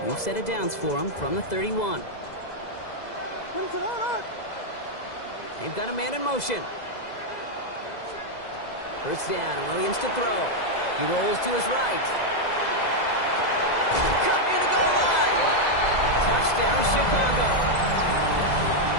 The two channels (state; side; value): late; right; 2.0 ms